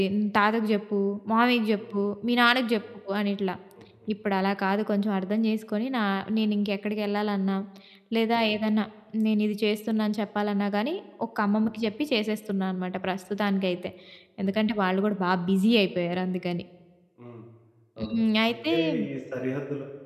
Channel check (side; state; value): both; identical; correlation 1.00